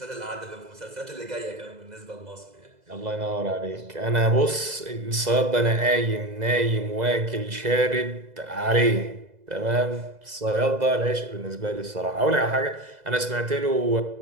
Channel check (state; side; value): late; left; 2.0 ms